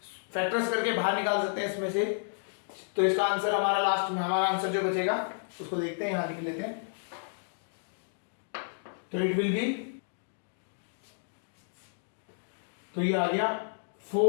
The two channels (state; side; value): silent; right; digital silence